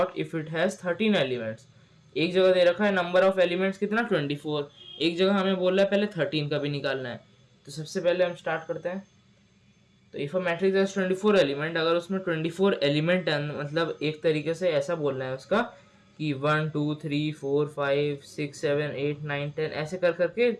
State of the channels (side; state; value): both; identical; correlation 1.00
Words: if it has 13 elements. एक जगह दे रखा है नंबर ऑफ एलिमेंट्स कितना 24, एक जगह हमें बोल रहा है पहले 13 का भी निकालना है। तो सबसे पहले हम स्टार्ट करते हैं। तो if a matrix has 24 element, अगर उसमें 24 एलिमेंट है, मतलब एक तरीके से ऐसा बोलना है उसका कि 1 2 3 4 5 6 7 8 9 10 ऐसे कर करके